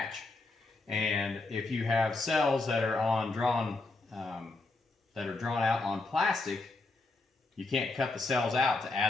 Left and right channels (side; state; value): right; quieter; 3.3 dB